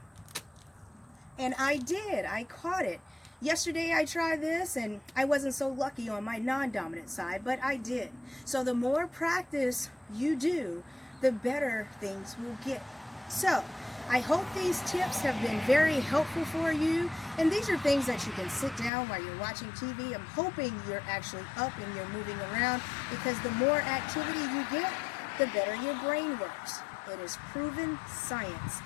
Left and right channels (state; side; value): drops out; right; at 18.9 s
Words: And I did. I caught it. Yesterday I tried this and I wasn't so lucky on my non-dominant side, but I did. So the more practice you do, the better things will get. So I hope these tips have been very helpful for you, and these are things that you can sit down while you're watching TV. I'm hoping you're actually up and you're moving around, because the more activity you get, the better your brain works. It is proven science.